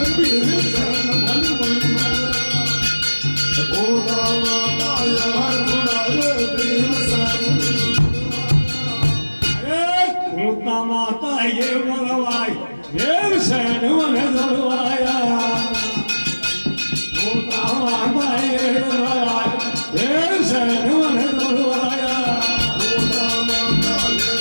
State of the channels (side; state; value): both; inverted; correlation -1.00